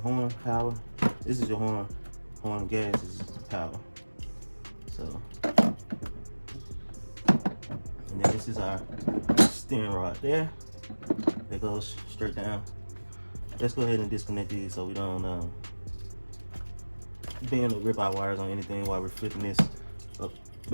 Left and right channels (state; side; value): inverted; both; correlation -1.00